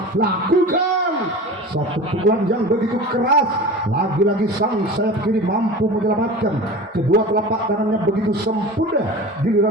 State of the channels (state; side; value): normal; both; correlation 0.35